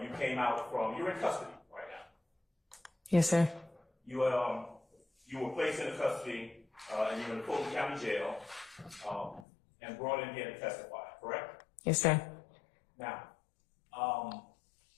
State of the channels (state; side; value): drops out; right; at 9.5 s